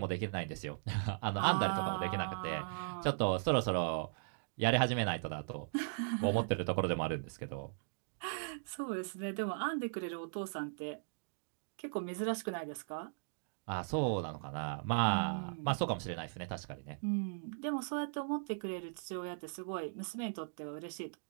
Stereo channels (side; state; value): left; silent; digital silence